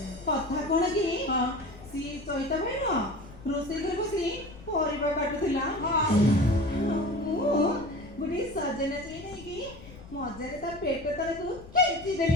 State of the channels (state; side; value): noise; left; rumble, 18 dB below the sound